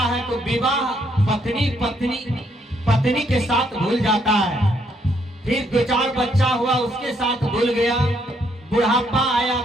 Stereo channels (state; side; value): normal; both; correlation 0.72